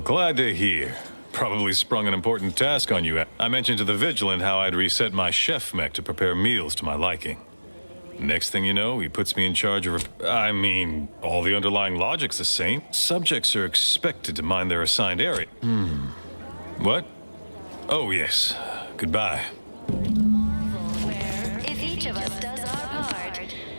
glad to hear. Probably sprung an important task on you. I mentioned to the Vigilant how I'd reset my chef mech to prepare meals to my liking. Next thing you know, he puts me in charge of... I mean, all the underlying logic's the same. Subjects are expected to mind their assigned area. What? Oh, yes. Goodbye. Where, if each of us does our part,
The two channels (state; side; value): inverted; both; correlation -1.00